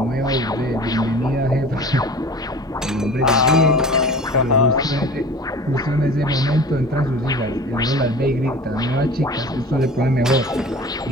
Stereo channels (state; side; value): normal; both; correlation 0.40